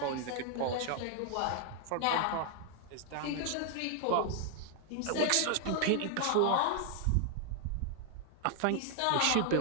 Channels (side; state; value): both; different; correlation 0.00